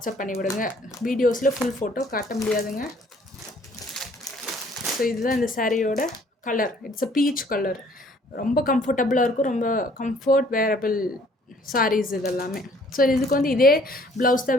பண்ணி விடுங்க. வீடியோஸில் ஃபுல் ஃபோட்டோ காட்ட முடியாதுங்க. ஸோ இதுதான் இந்த சாரியோட colour. It's a peach colour. ரொம்ப கம்ஃபர்டபுளாக இருக்கும். ரொம்ப கம்ஃபர்ட் வேரபிள் சாரீஸ் இதெல்லாமே. ஸோ இதுக்கு வந்து இதே ப்ளவுஸ்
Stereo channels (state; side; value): normal; both; correlation 0.59